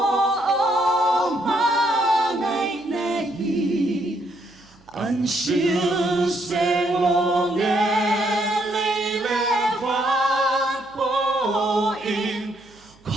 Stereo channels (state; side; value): noise; right; hum, 30 dB below the sound